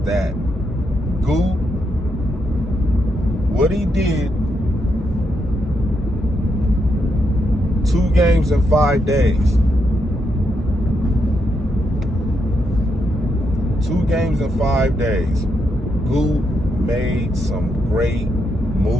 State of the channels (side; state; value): both; normal; correlation 0.81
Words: Gute, what he did 2 games in 5 days. 2 games in 5 days. Gute made some great